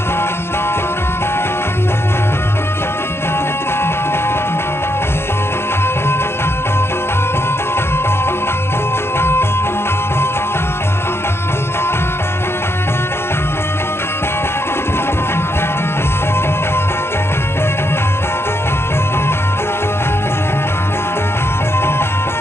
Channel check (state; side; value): late; right; 0.12 ms